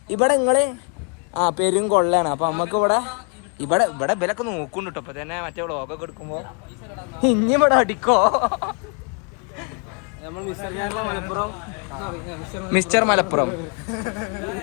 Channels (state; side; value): quieter; right; 38.7 dB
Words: ഇവിടെ നിങ്ങള് പെരും കൊള്ളയാണ്. അപ്പൊ നമ്മക്ക് ഇവിടെ ഇവരൊക്കെ നോക്കുന്നുണ്ട് കേട്ടോ. ഇപ്പൊ തന്നെ മറ്റേ വ്ളോഗൊക്കെ എടുക്കുമ്പോ ഇനി ഇവിടെ അടിക്കോ. മിസ്റ്റർ മലപ്പുറം.